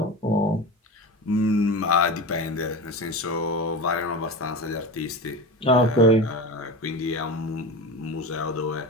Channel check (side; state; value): both; normal; correlation 0.28